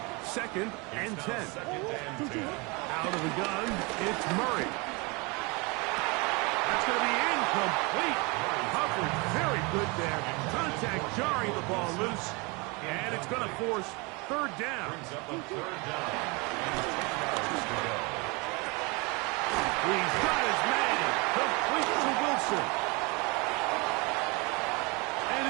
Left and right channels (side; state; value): left; quieter; 28.1 dB